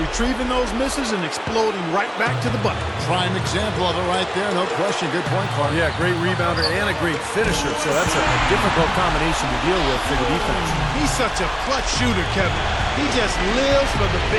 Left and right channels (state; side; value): identical; both; correlation 1.00